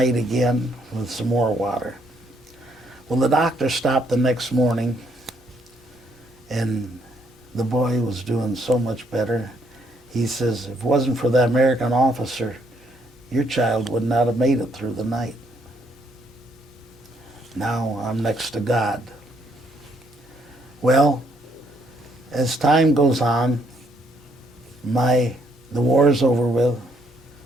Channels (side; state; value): both; normal; correlation 0.70